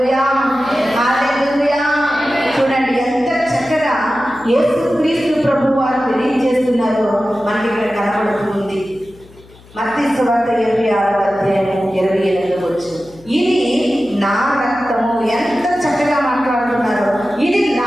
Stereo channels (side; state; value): left; noise; hum, 24 dB below the sound